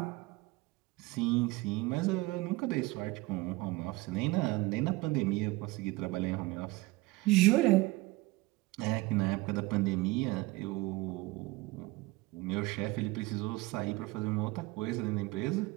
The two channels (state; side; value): quieter; left; 21.5 dB